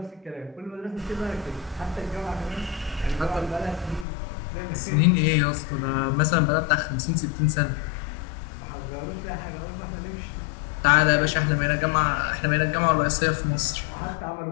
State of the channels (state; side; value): drops out; right; at 4.0 s